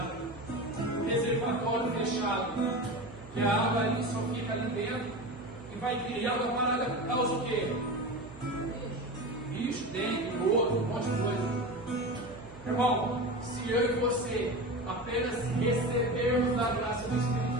um reservatório fechado, que a água ali só fica ali dentro e vai criar uma parada, causa o quê? Bicho, dengue, lodo, um monte de coisa. Irmão, se eu e você apenas recebermos da graça do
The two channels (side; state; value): right; noise; hum, 18 dB below the sound